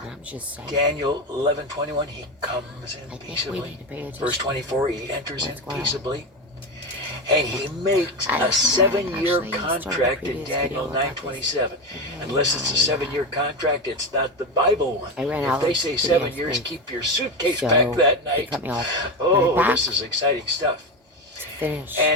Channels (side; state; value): both; normal; correlation 0.17